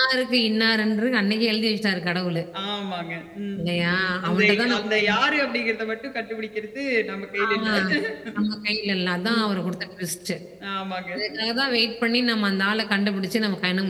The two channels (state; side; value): identical; both; correlation 1.00